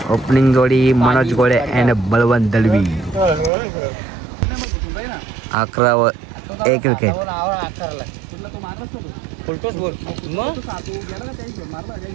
ओपनिंग जोडी मनोज गोळे अँड बळवंत दलवी. 11 एक विकेट.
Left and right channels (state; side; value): drops out; left; at 3.5 s